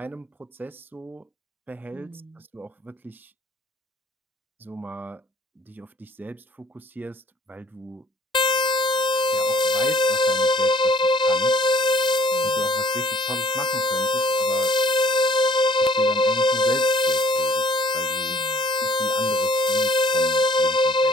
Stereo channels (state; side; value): normal; both; correlation 0.57